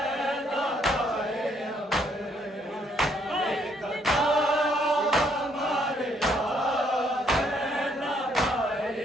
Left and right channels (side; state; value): both; normal; correlation 0.69